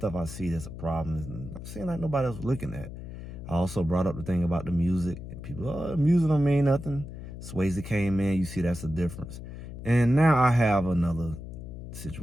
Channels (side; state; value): left; noise; hum, 11 dB below the sound